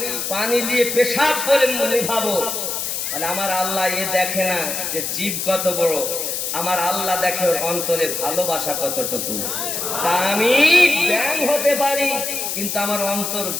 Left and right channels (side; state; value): left; noise; hiss, 3 dB below the sound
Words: পানি দিয়ে পেশাব করে নিভাবো। মানে আমার আল্লাহ এ দেখে না যে জীব কত বড়, আমার আল্লাহ দেখে ওর অন্তরে ভালোবাসা কতটুকু। তা আমি ব্যাং হতে পারি, কিন্তু আমার অন্তর